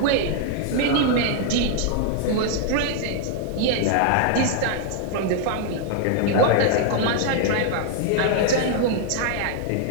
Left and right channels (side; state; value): both; different; correlation 0.00